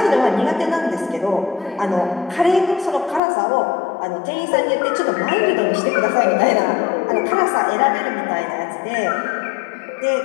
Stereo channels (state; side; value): drops out; right; at 3.2 s